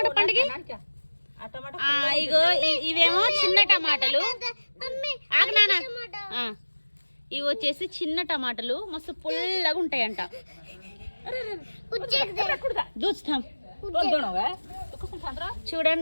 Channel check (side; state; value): both; inverted; correlation -1.00